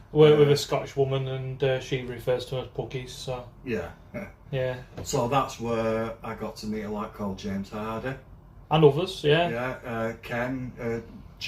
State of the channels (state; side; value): identical; both; correlation 1.00